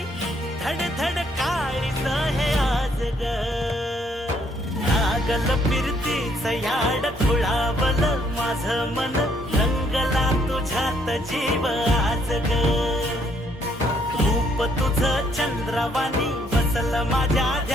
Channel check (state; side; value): normal; both; correlation 0.69